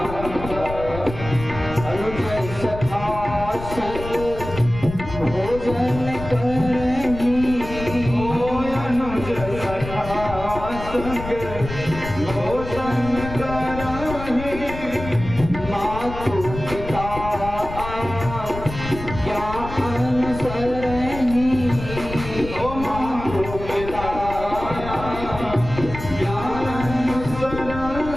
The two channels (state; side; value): noise; left; rumble, 10 dB below the sound